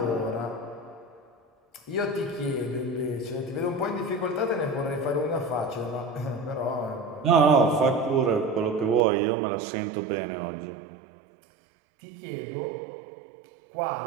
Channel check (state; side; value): drops out; left; at 9.0 s